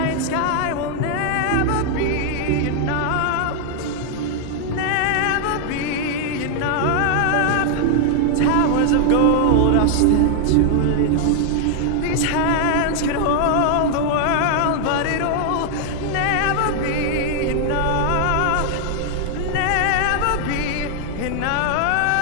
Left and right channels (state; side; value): different; both; correlation 0.00